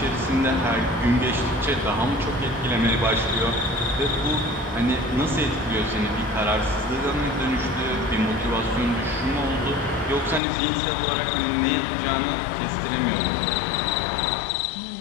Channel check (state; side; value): drops out; right; at 10.4 s